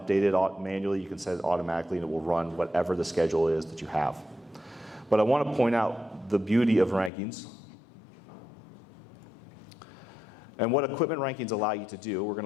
manually. You can set it automatically and it will run whatever the schedule is that you have. But I want to point out the beauty of rankings and what equipment rankings allow you to do. We're going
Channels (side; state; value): right; drops out; at 7.1 s